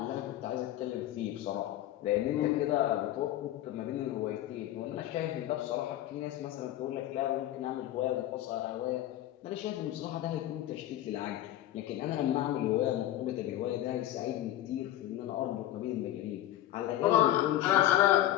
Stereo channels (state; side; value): quieter; right; 13.5 dB